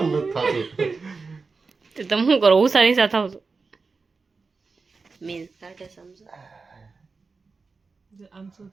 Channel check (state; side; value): quieter; left; 4.4 dB